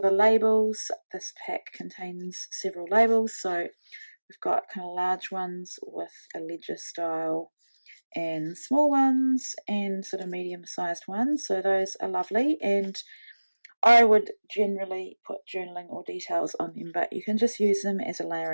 labels, this pack contains several labels. So we've got kind of large ones with a ledger style, and small ones, and sort of medium-sized ones. So those are lovely, and I would generally put journaling or details on them, but you can just use them as a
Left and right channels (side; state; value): both; inverted; correlation -1.00